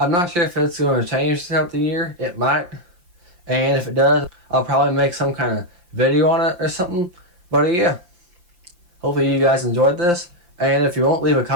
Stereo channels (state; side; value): late; left; 5.8 ms